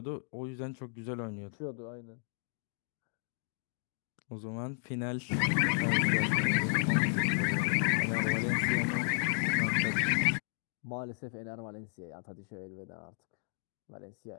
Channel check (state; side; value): silent; right; 55 dB below the other